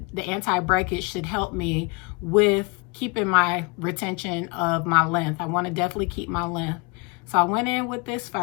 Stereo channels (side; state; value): right; quieter; 30.3 dB